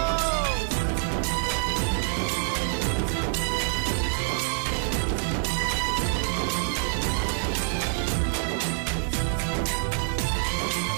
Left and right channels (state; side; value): silent; left; 61 dB below the other